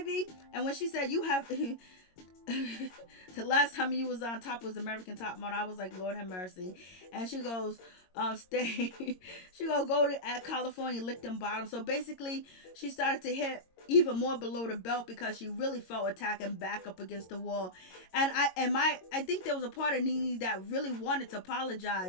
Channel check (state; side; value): late; right; 22 ms